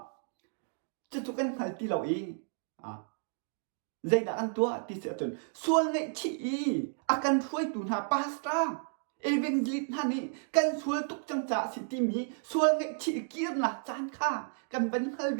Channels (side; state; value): left; silent; digital silence